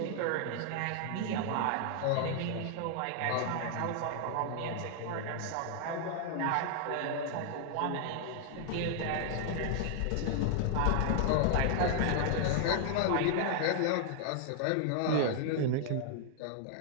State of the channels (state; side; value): different; both; correlation 0.00